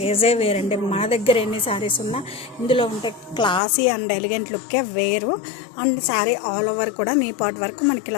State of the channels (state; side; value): drops out; right; at 3.6 s